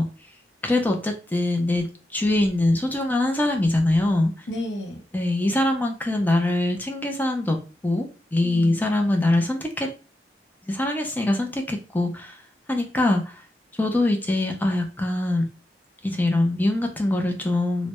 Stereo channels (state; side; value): normal; both; correlation 0.88